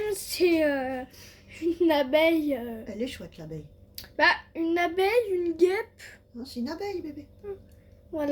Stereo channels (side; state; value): both; identical; correlation 1.00